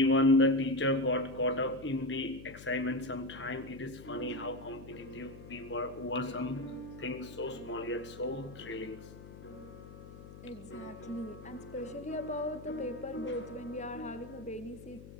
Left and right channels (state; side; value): noise; left; hum, 15 dB below the sound